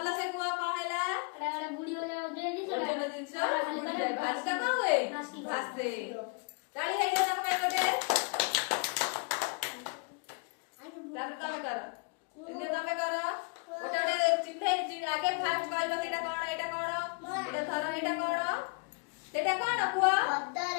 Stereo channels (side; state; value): right; quieter; 33.6 dB